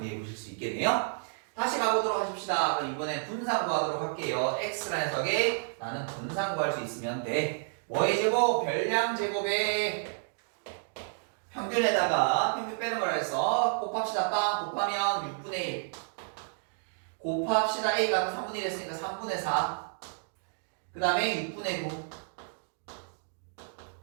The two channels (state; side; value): silent; left; digital silence